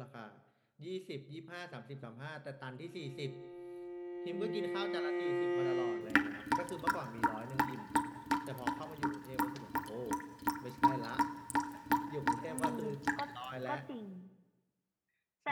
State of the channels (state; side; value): identical; both; correlation 1.00